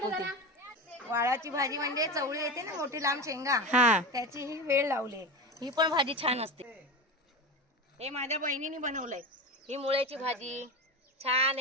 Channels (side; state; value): both; normal; correlation 0.24